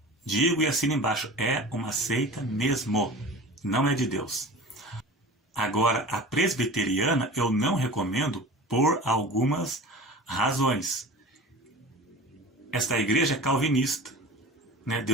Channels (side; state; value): both; normal; correlation 0.37